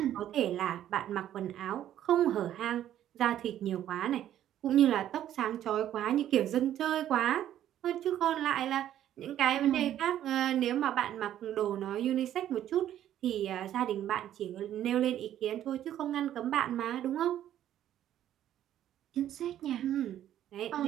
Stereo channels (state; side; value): quieter; left; 11.5 dB